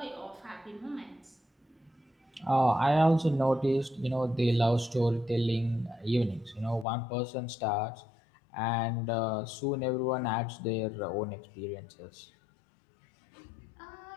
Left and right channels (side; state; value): right; drops out; at 6.9 s